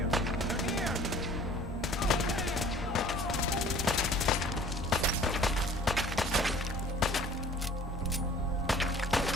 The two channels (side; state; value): both; normal; correlation 0.50